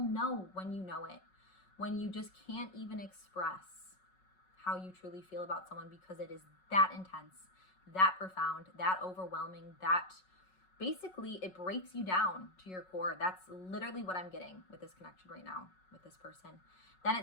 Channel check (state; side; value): late; right; 5.4 ms